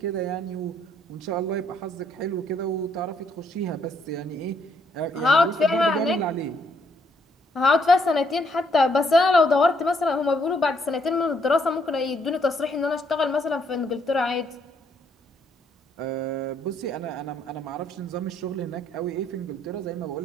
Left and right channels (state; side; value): normal; both; correlation 0.70